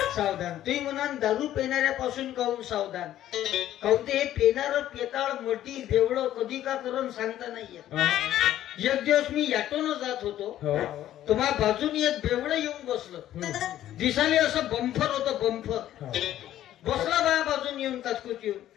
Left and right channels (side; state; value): right; quieter; 12.6 dB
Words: सावधान. तुम्ही म्हणाल दारू पिणाऱ्यापासून काहून सावधान? काहून ते हे पिणार पेताळ मोठी बेवड कधी का करून सांगता नाहीये. एक दिवस मी ऑटोनं जात होतो, तुम्हा बाजूनी एक बेवड येऊन बसलं. दिसाले असं बंफर होतं, बंफर बसला बाया बाजून येऊन काचकूच येऊन